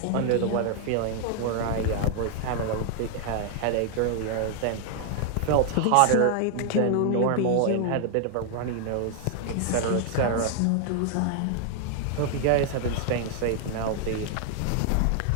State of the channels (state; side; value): different; both; correlation 0.00